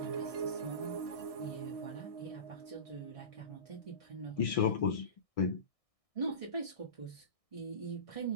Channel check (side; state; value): right; late; 1.6 ms